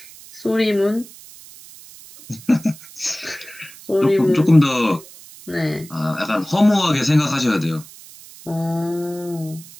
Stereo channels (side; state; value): right; noise; hiss, 19 dB below the sound